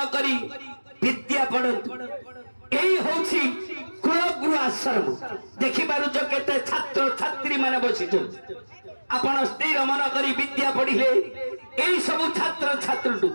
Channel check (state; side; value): inverted; both; correlation -1.00